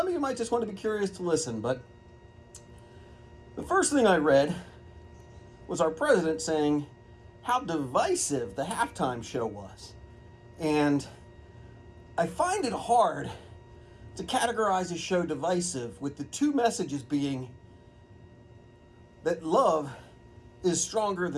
of you might just want to be curious to listen. But the first thing I read was our president saying how divisive the halftime show was. And I find it hard to categorize a show divisive with the two messages being that love is stronger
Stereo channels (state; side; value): identical; both; correlation 1.00